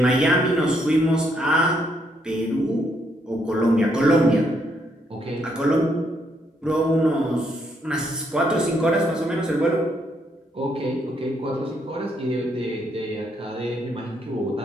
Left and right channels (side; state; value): both; normal; correlation 0.73